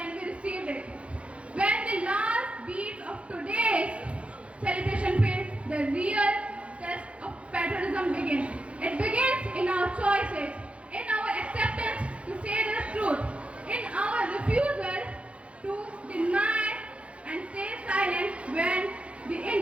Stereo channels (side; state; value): left; late; 0.061 ms